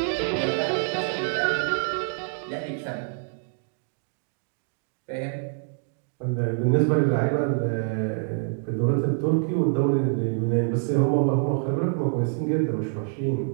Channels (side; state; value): left; silent; 61 dB below the other